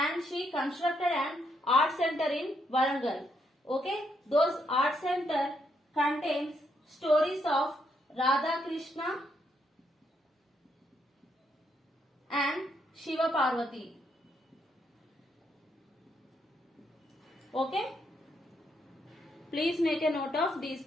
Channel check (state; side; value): normal; both; correlation 0.76